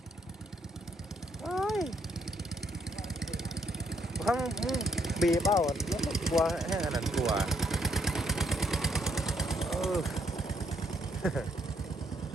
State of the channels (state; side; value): normal; both; correlation 0.72